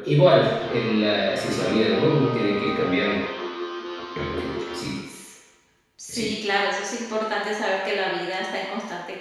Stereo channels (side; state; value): both; identical; correlation 1.00